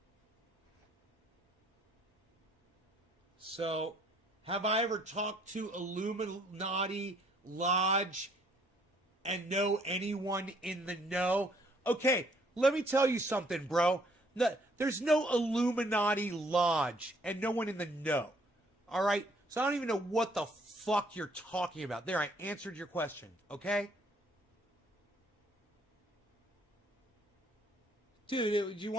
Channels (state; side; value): normal; both; correlation 0.64